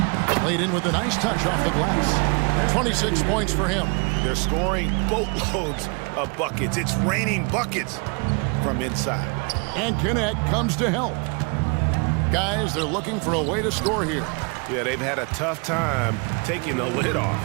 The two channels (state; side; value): quieter; left; 33.2 dB